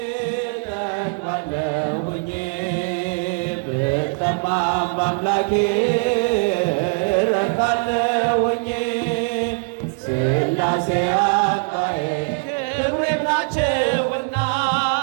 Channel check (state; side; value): silent; left; digital silence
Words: ተክባለሁኝ ብጠማም በአምላኬ ረካለሁኝ። ስላሴ አባዬ ክብሬም ናቸውና